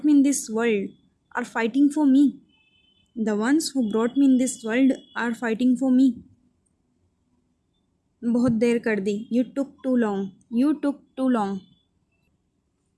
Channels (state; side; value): identical; both; correlation 1.00